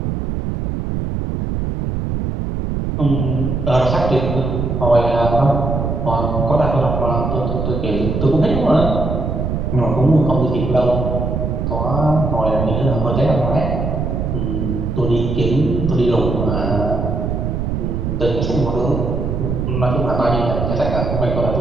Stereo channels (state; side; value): noise; right; rumble, 2 dB below the sound